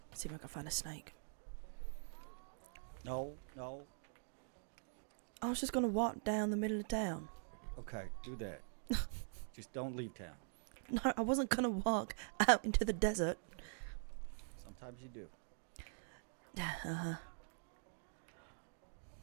See if I can find a snake. No. I was just gonna walk down the middle of town. Okay, do that. Just don't leave town. No, I wasn't gonna walk out into the desert. Sometimes you do. Uh-huh.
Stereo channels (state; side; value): silent; left; digital silence